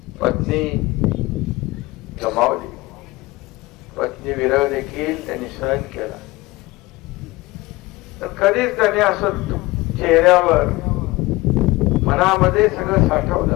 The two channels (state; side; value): quieter; right; 20.7 dB